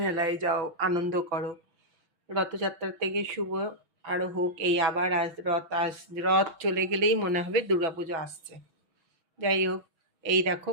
যাও, আনন্দ করো। রথযাত্রার থেকে শুভ আরও হোক। এই আবার রথ চলে গেলেই মনে হবে দুর্গাপুজো আসছে। যাই হোক, এই দেখো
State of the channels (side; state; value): left; late; 6.1 ms